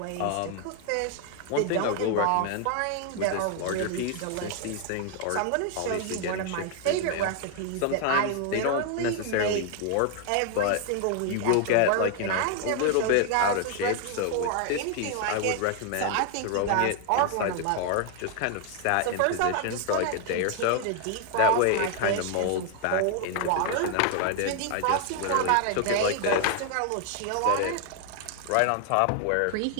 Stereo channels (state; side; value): different; both; correlation 0.00